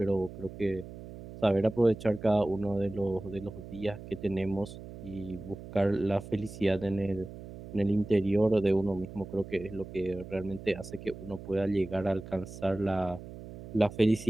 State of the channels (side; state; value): right; noise; hum, 13 dB below the sound